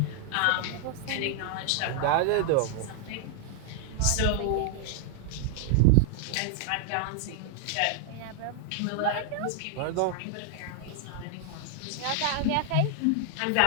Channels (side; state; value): both; different; correlation 0.00